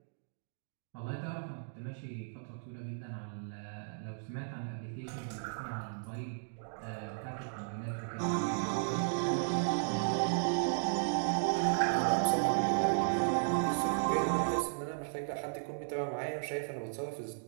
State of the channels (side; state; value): left; silent; digital silence